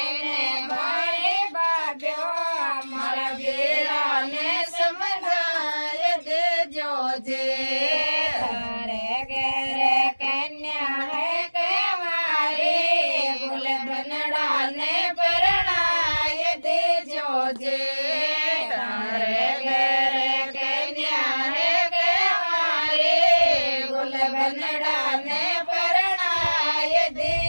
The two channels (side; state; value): both; inverted; correlation -1.00